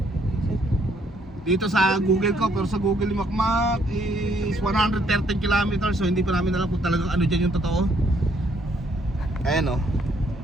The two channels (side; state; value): both; normal; correlation 0.68